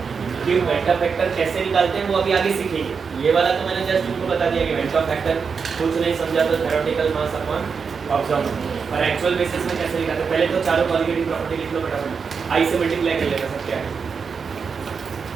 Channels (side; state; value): left; quieter; 5.7 dB